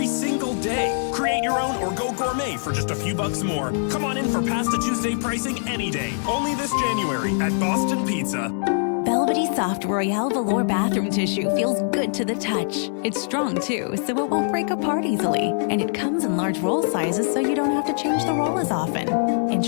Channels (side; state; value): right; silent; digital silence